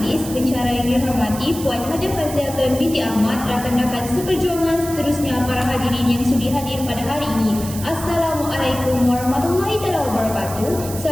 pensyarah yang dihormati Puan Hajah Fazliatun binti Ahmad, rakan-rakan seperjuangan seterusnya para hadirin yang sudi hadir pada hari ini. Assalamualaikum warahmatullahi wabarakatuh.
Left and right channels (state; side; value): noise; right; hiss, 11 dB below the sound